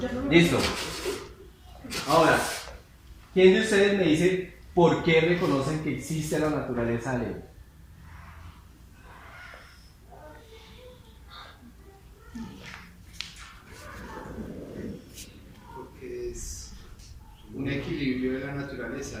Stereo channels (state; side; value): identical; both; correlation 1.00